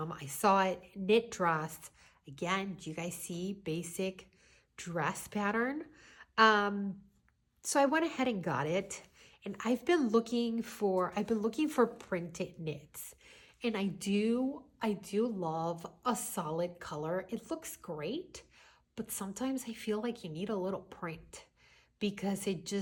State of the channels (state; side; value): identical; both; correlation 1.00